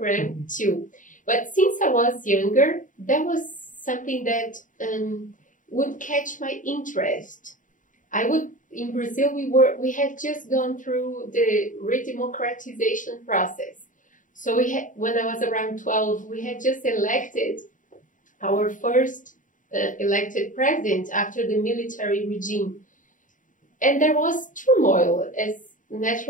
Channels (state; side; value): late; right; 0.38 ms